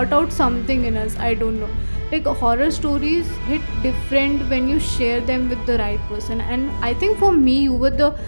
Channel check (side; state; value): both; inverted; correlation -1.00